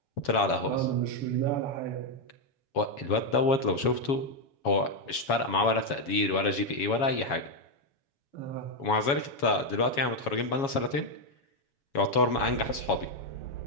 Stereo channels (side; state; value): right; late; 7.2 ms